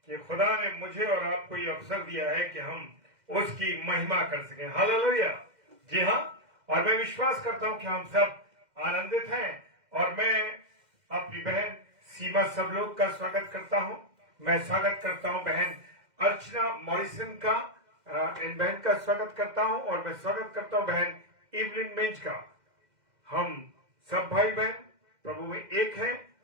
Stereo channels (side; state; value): left; late; 2.1 ms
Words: कि खुदा ने मुझे और आपको ये अवसर दिया है कि हम उसकी महिमा कर सकें। हालेलुया। जी हाँ, और मैं विश्वास करता हूं कि हम सब आनंदित हैं और मैं अपनी बहन सीमा सब लोग का स्वागत करता हूं। मैं स्वागत करता हूं बहन अर्चना मॉरिसन का, इन बहन का स्वागत करता हूं और मैं स्वागत करता हूं बहन इवलिन मिंज का। हम सब भाई बहन प्रभु में एक हैं